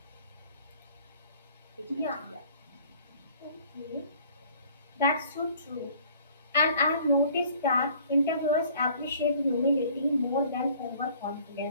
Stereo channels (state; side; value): inverted; both; correlation -0.54